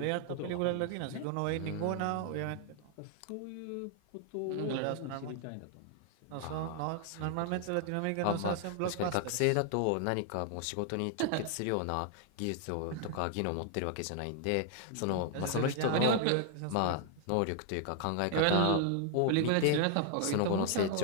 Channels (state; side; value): different; both; correlation 0.00